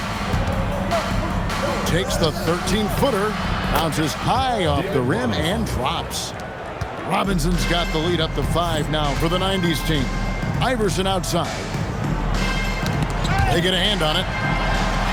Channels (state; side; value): identical; both; correlation 1.00